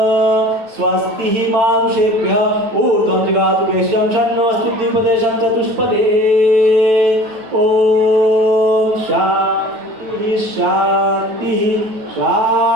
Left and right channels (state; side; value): late; left; 8.9 ms